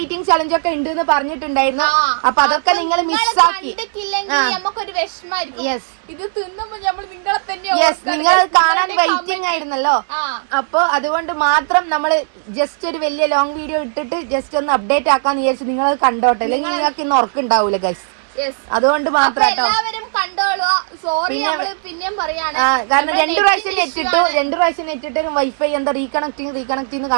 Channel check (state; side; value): silent; left; digital silence